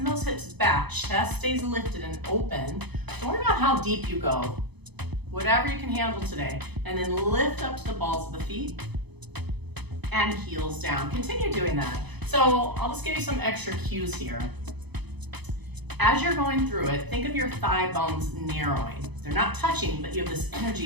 those hips back, chest stays lifted and open. Don't worry about how deep you go, whatever you can handle today. And then lift up to the balls of the feet, and heels down. Continue doing that. So I'll just give you some extra cues here. As you're going through it, think of your thigh bones narrowing. They're not touching, but you have this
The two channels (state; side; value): late; left; 0.99 ms